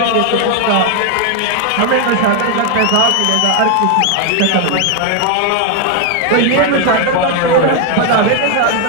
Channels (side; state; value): both; different; correlation 0.01